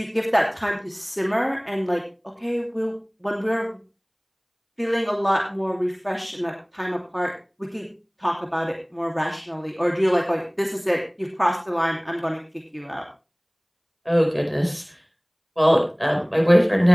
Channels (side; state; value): both; identical; correlation 1.00